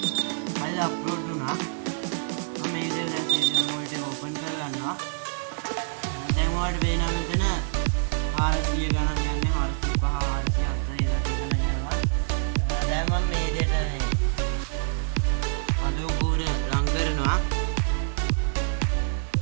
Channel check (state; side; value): silent; left; 57 dB below the other